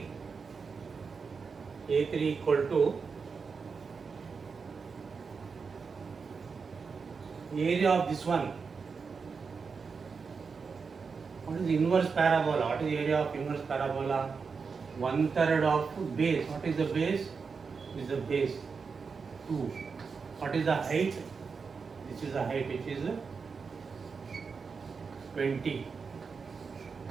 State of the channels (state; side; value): quieter; left; 5.3 dB